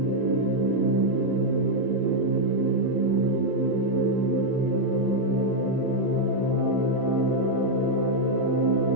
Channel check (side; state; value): left; late; 31 ms